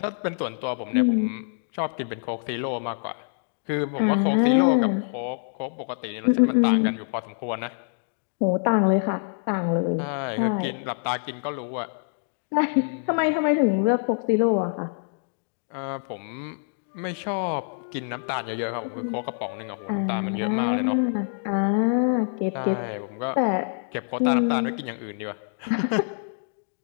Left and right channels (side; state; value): right; silent; digital silence